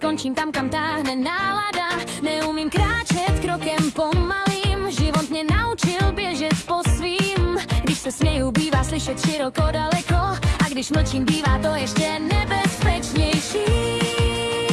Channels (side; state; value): both; identical; correlation 1.00